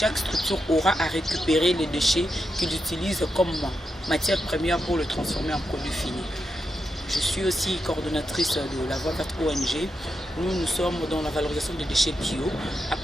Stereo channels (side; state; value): both; normal; correlation 0.85